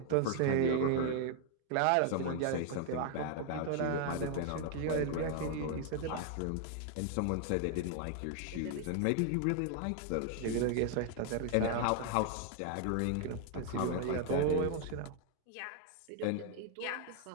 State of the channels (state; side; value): different; both; correlation 0.00